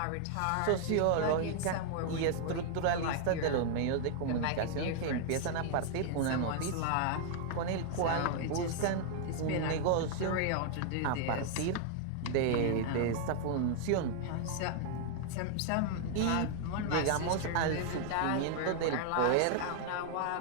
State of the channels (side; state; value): both; different; correlation 0.00